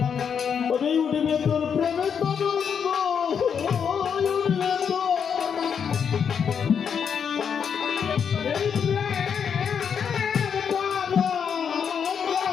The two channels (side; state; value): right; quieter; 7.2 dB